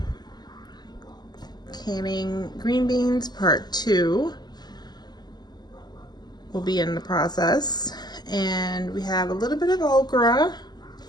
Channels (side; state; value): right; late; 0.20 ms